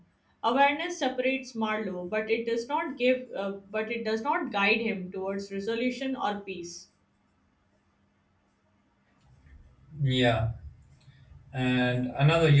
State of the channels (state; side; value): identical; both; correlation 1.00